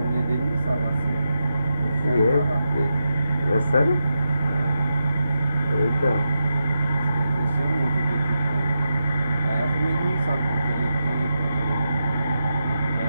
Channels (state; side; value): inverted; both; correlation -0.87